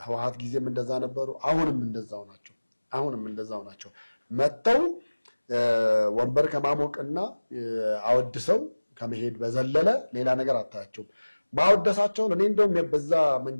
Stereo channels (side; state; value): both; inverted; correlation -1.00